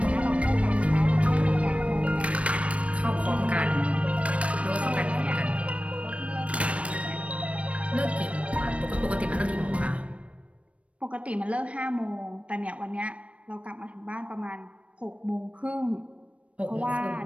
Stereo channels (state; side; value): late; left; 0.063 ms